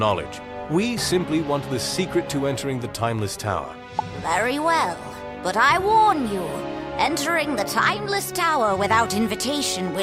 We simply want the secret to entering the Timeless Tower. Very well. But I warn you, entering the Timeless Tower without invitation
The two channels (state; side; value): identical; both; correlation 1.00